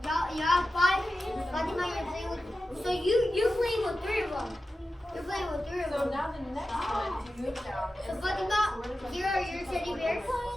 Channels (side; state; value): both; normal; correlation 0.93